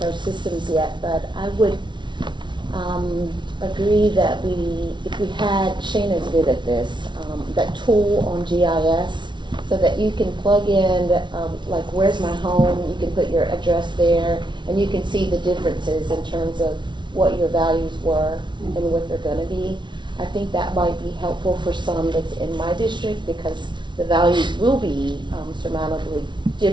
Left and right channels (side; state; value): left; late; 0.23 ms